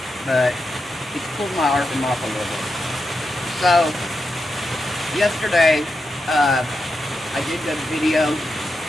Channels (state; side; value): normal; both; correlation 0.87